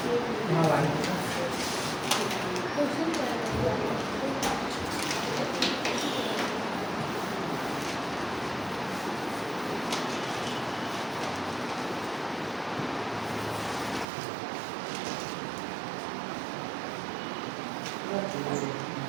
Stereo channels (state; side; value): drops out; left; at 14.1 s